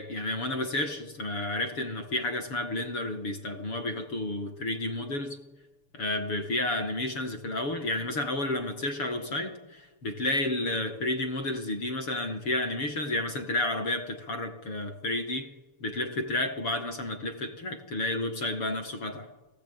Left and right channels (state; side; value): late; right; 7.0 ms